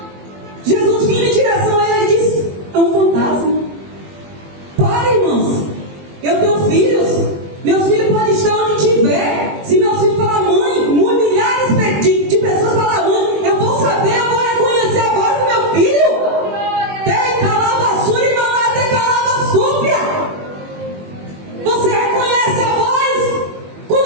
Jesus vinha em direção a ele e disse: é um fantasma. Para, irmãos, eu tenho filhos, meus filhos podem estar onde estiver. Se meus filhos falar mãe, milhares de pessoas falar mãe, eu vou saber, eu vou reconhecer a voz do meu filho. Você reconhece a voz quando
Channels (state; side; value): late; left; 21 ms